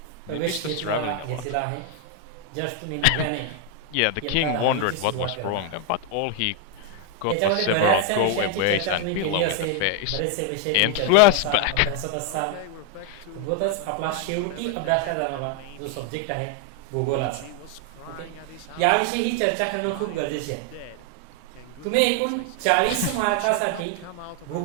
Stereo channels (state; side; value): different; both; correlation 0.00